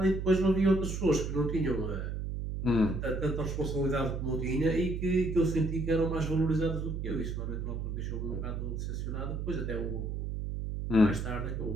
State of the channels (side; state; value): right; noise; hum, 3 dB below the sound